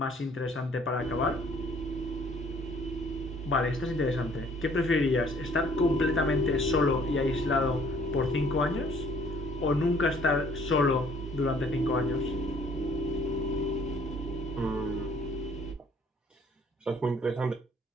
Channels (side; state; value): both; normal; correlation 0.58